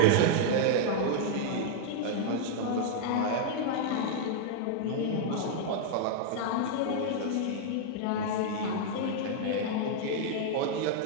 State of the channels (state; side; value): different; both; correlation -0.01